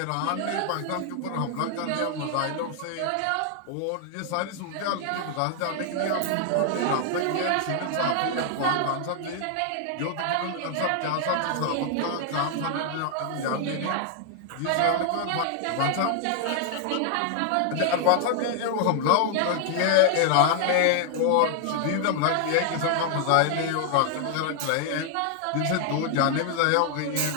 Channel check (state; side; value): different; both; correlation 0.00